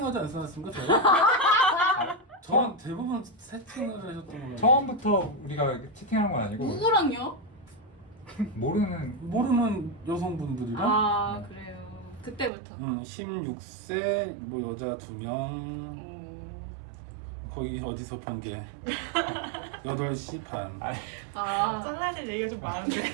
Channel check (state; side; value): drops out; left; at 12.5 s